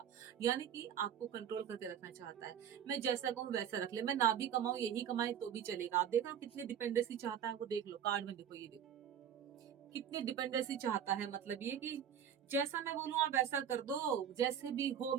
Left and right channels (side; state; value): left; quieter; 8.9 dB